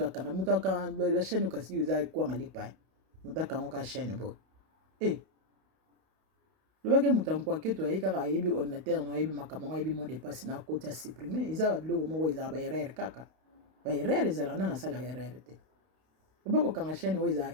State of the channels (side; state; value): left; late; 32 ms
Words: akanga moto akanga la chaîne okasi eza ekwanga lipa moto akango ka chaîne boye lobaki moto ankwake ayebi kaka ayebi ordinateur na ayebi makambo ngo ayebi mot de passe na koti ya supprime eza biloko moko ezala baerreur kaka baerreur ezalaka nana asalaka erreur te oba kokanga chaîne oyo